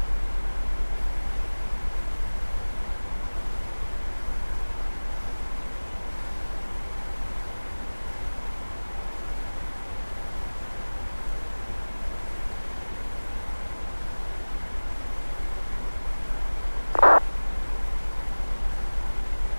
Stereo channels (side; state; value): both; inverted; correlation -1.00